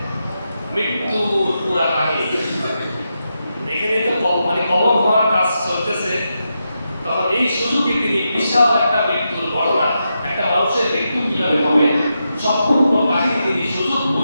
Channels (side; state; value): both; inverted; correlation -0.86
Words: মৃত্যুর পুরা কাহিনী। এখানে তো মানে কবর ভরার কাজ চলতেছে, তখন এই সুযোগে তিনি বিশাল একটা মৃত্যুর ঘটনা, একটা মানুষের মৃত্যু কিভাবে হবে সম্পূর্ণ কাহিনী তিনি সুযোগ